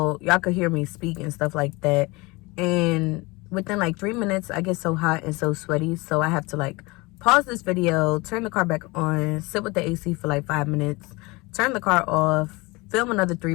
y'all could hear me speak and stuff like that, and within like 3 minutes I get so hot and so sweaty, so I have to like pause this video, turn the car back on, sit with the AC for like 5 minutes, turn the car off, film another 3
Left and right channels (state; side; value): quieter; right; 24.3 dB